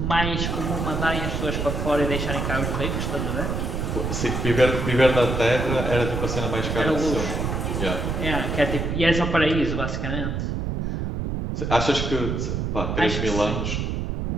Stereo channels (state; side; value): noise; right; rumble, 2 dB below the sound